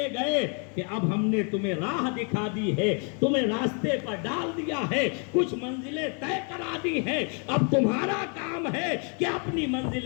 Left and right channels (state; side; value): quieter; right; 38.3 dB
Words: گئے کہ اب ہم نے تمہیں راہ دکھا دی ہے، تمہیں راستے پر ڈال دیا ہے، کچھ منزلیں طے کرا دی ہیں، اب تمہارا کام ہے کہ اپنی